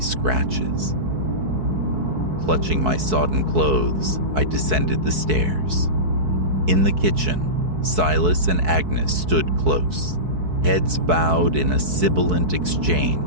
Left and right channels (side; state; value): left; late; 4.6 ms